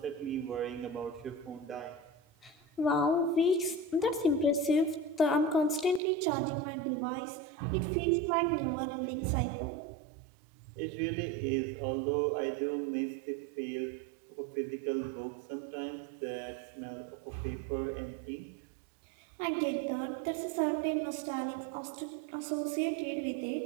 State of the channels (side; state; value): left; drops out; at 6.0 s